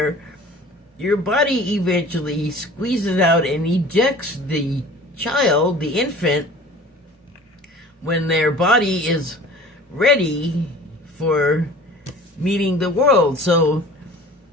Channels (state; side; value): normal; both; correlation 0.44